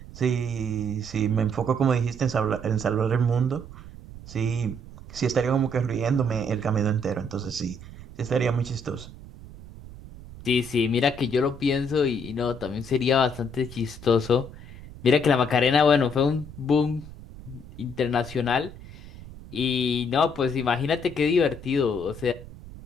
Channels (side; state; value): right; noise; rumble, 16 dB below the sound